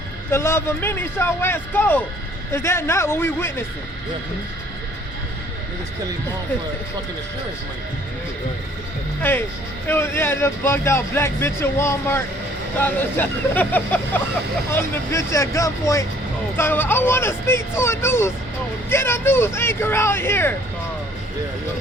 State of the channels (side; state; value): both; normal; correlation 0.58